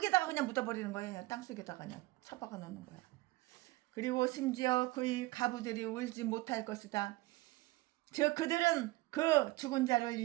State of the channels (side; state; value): left; quieter; 20.6 dB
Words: 그냥 묻어버리는 거예요. 그냥 땅속에다가 그냥 처박아 놓는 거야. 그리고 심지어 그의 가부들이 울지 못할 것이다. 즉 그들은 그 죽은 자를